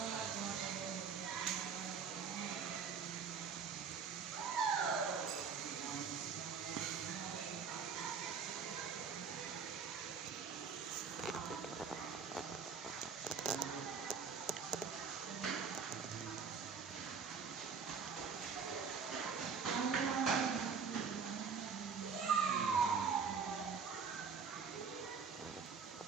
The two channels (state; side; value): quieter; left; 6.0 dB